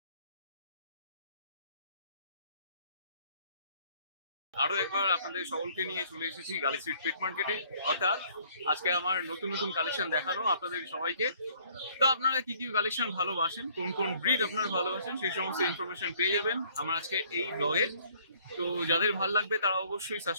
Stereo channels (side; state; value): both; inverted; correlation -0.60